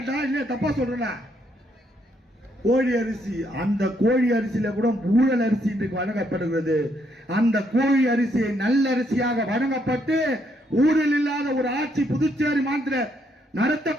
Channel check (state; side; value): normal; both; correlation 0.73